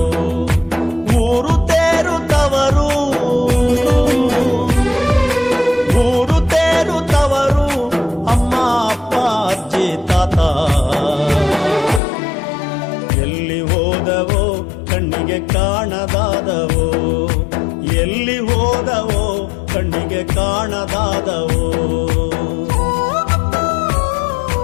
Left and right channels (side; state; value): right; drops out; at 12.0 s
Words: ಊರು ತೇರುತ್ತವರು, ಊರು ತೇರುತ್ತವರು, ಅಮ್ಮ ಅಪ್ಪ ಅಜ್ಜಿ ತಾತ. ಎಲ್ಲಿ ಹೋದವೋ ಕಣ್ಣಿಗೆ ಕಾಣದಾದವೋ, ಎಲ್ಲಿ ಹೋದವೋ ಕಣ್ಣಿಗೆ ಕಾಣದಾದವೋ.